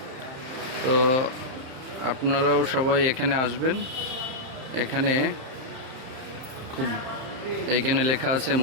তো আপনারাও সবাই এখানে আসবেন। এইখানে লেখা আছে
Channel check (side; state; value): left; late; 31 ms